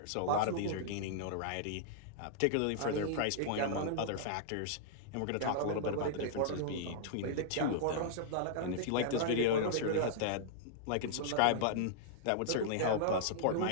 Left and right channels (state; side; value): different; both; correlation -0.01